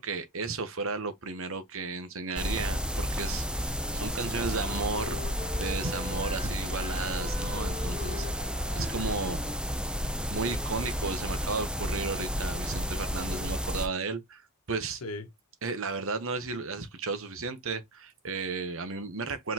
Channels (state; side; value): normal; both; correlation 0.31